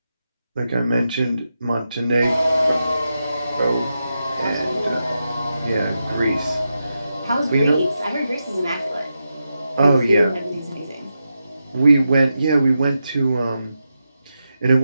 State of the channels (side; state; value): both; inverted; correlation -0.88